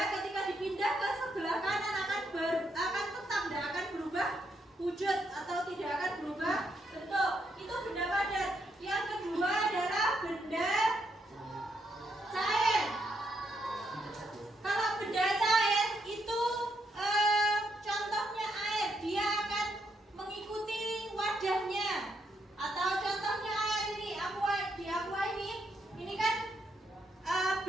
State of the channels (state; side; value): normal; both; correlation 0.78